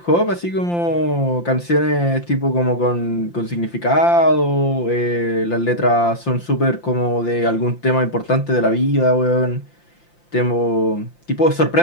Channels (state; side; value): late; right; 5.8 ms